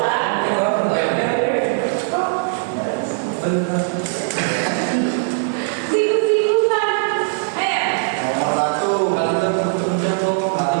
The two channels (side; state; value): left; silent; 59 dB below the other